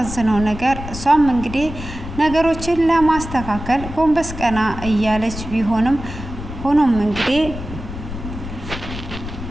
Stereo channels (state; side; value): noise; left; rumble, 10 dB below the sound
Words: ነገር እሷም እንግዲህ ነገሮችን ለማስተካከል ጎንበስ ቀና እያለች ቢሆንም ሆኖም እንግዲህ